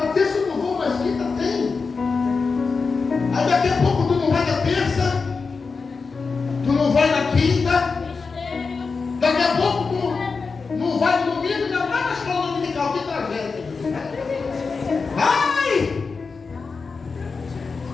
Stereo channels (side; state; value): right; quieter; 4.7 dB